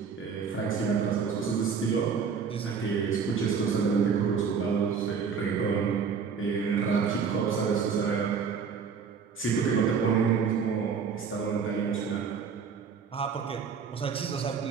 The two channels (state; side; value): quieter; left; 6.1 dB